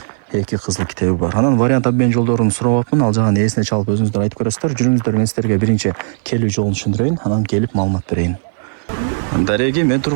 Эки кызыл китеби бар. Анан вариант обмен жолдорун сурап, ал жагын эсине чалып өзүңүздөр айтып көрөсүздөр. Жүрүңүздөр, мен сиздерге биринчи келүү жолун түшүндүрөйүн, анан келип маалымат берейин. Дареги, мен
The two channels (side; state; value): left; silent; 58 dB below the other